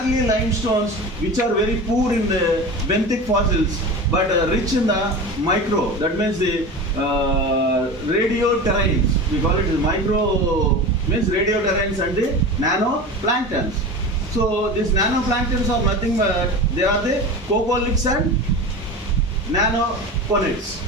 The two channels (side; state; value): both; normal; correlation 0.30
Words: limestones, which are very poor in the benthic fossils but rich in the micro, that means the radioterranes. We call it micro, means radioterranes and the nanoplanktons. So these nanoplanktons are nothing but they are the coccoliths and nanoconids.